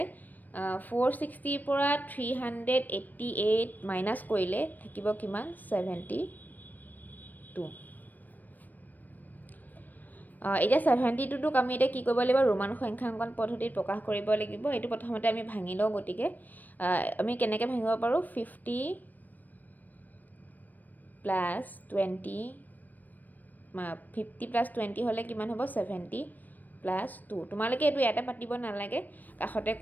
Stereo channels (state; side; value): late; right; 0.085 ms